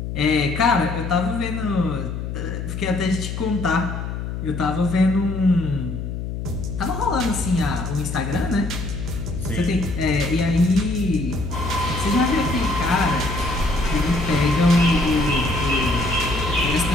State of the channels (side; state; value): left; noise; hum, 5 dB below the sound